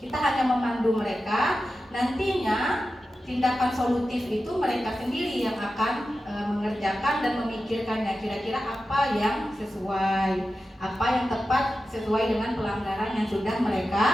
hanya memandu mereka. Nantinya tindakan solutif itu mereka sendiri yang akan mengerjakan dan memikirkannya, kira-kira apa yang sesuai, apa yang tepat sesuai dengan pelanggaran yang sudah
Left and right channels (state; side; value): normal; both; correlation 0.93